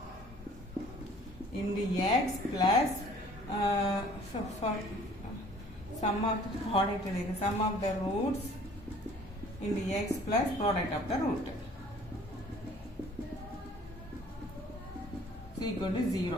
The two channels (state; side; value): normal; both; correlation 0.53